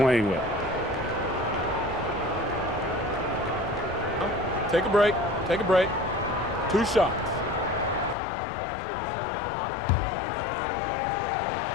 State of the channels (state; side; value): drops out; right; at 8.2 s